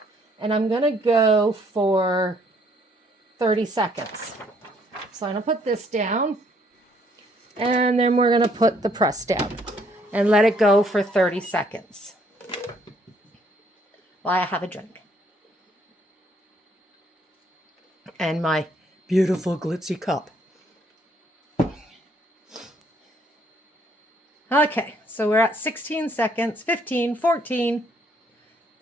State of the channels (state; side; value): normal; both; correlation 0.66